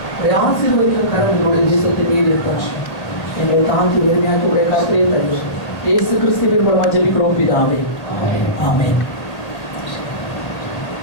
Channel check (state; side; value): late; right; 1.8 ms